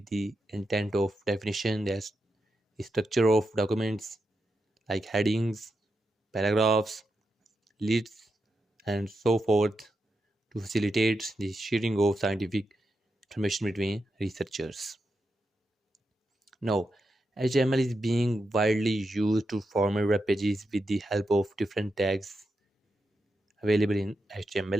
the intent of definition, as the structure of documents like headings, paragraphs, lists, and so forth, to facilitate the sharing of scientific information between researchers. Now, HTML is being widely used to format web pages with the help of different tags available in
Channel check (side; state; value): both; normal; correlation 0.86